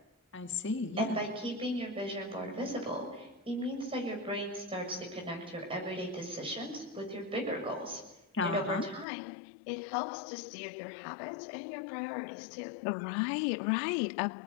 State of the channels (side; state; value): right; drops out; at 9.1 s